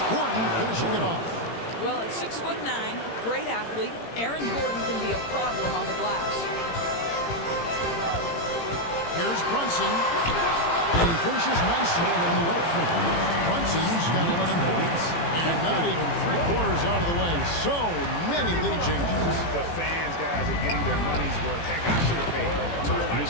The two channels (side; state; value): right; late; 18 ms